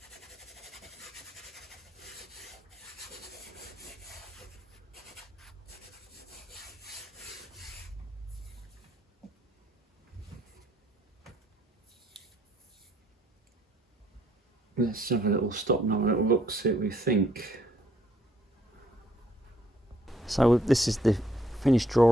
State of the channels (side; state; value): both; normal; correlation 0.67